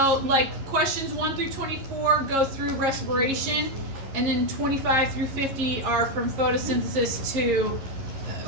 like, questions 1 through 24 go through respiration, and then 25 through 50 are from photosynthesis to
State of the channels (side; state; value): left; late; 11 ms